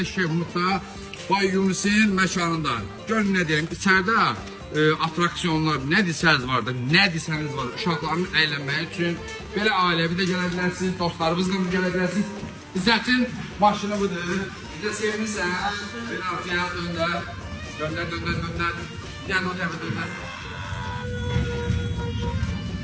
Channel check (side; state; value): both; identical; correlation 1.00